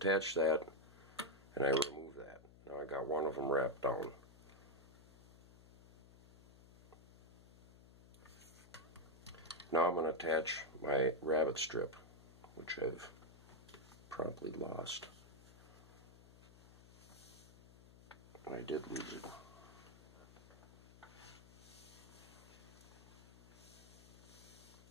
that, and I remove that. Now I got one of them wrapped down. Now I'm going to attach my rabbit strip, which I've promptly lost. I did lose it.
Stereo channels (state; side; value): noise; left; hum, 20 dB below the sound